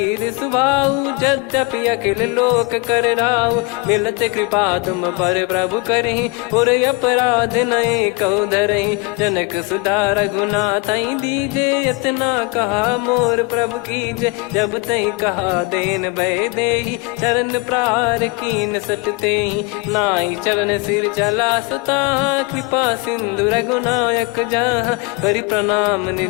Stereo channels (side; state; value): right; quieter; 25.5 dB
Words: सुभाऊ, यद्यपि अखिल लोक कर राऊ, मिलत कृपा तुम पर प्रभु करहि, पुर अपराध नए कहु धरहि, जनक सुधा रघुनाथ दीजे, इतना कहा मोर प्रभु कीजे, जब तई कहा देन भय देहि, चरण प्रार कीन सट तेहि, नाई चरण सिर चला सता, कृपा सिंधु रघुनायक जहाँ, करि प्रणाम